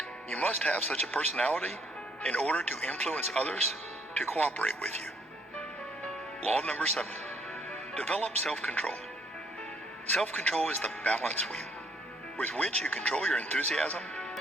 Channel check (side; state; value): both; normal; correlation 0.67